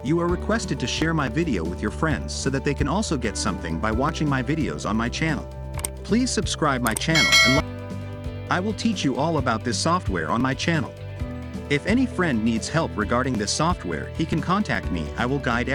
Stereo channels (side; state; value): both; identical; correlation 1.00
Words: You are requested to share my video with your friends so that they can also get something by watching my videos on my channel. Please subscribe my channel and I will teach you all about this software on my channel. If any friend needs help regarding this software, he can contact me. I will guide